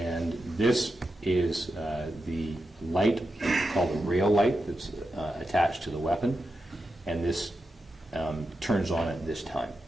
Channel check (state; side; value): normal; both; correlation 0.88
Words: this is the light called a rail light that's attached to the weapon, and this turns on at this time.